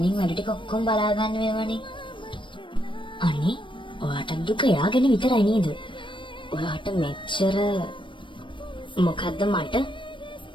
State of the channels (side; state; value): right; late; 0.24 ms